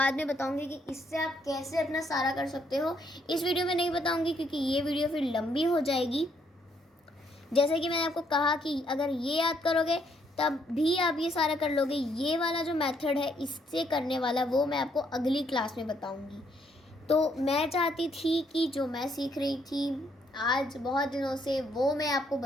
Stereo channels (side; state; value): both; normal; correlation 0.71